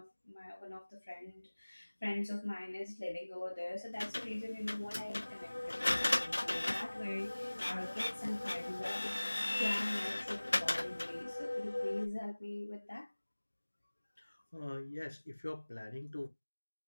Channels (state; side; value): inverted; both; correlation -1.00